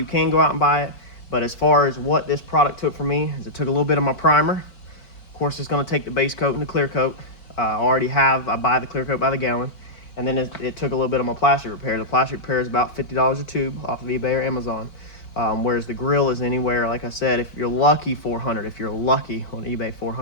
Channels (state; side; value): late; right; 4.5 ms